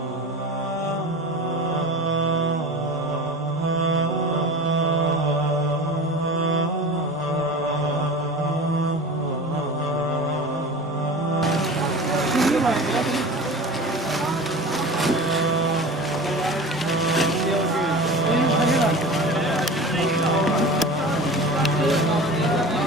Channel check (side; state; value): both; normal; correlation 0.34